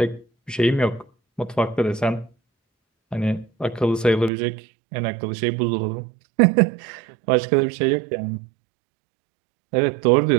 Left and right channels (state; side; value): drops out; left; at 4.3 s